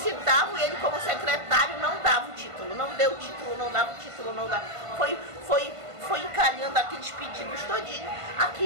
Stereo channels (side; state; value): left; late; 1.5 ms